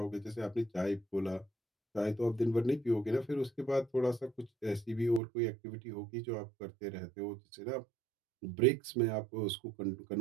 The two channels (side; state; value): left; drops out; at 5.2 s